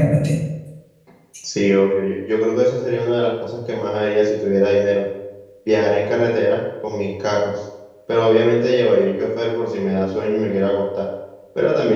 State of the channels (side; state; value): both; identical; correlation 1.00